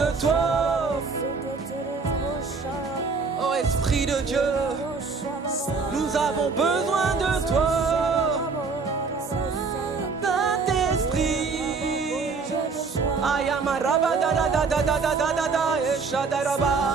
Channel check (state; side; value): quieter; left; 4.7 dB